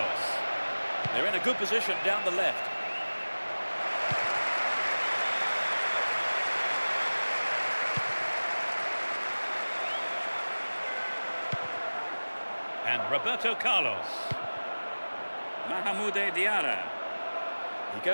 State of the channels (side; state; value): both; inverted; correlation -1.00